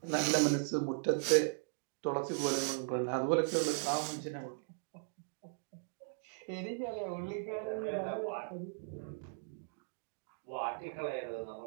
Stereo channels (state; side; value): silent; left; digital silence